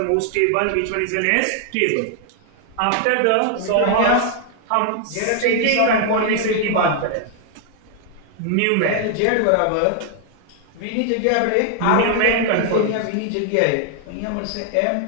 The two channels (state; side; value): different; both; correlation 0.00